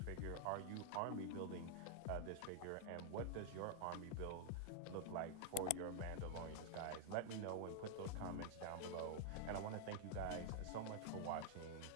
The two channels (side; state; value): both; different; correlation 0.00